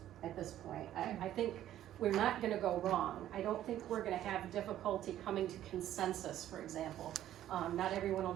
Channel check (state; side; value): quieter; left; 12.3 dB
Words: at this point. I think we're not gonna go wrong. I don't think we're gonna have difficulty coming to consensus, for example. Not everyone will